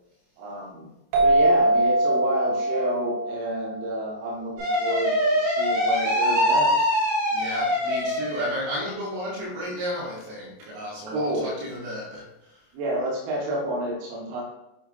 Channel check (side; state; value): left; late; 28 ms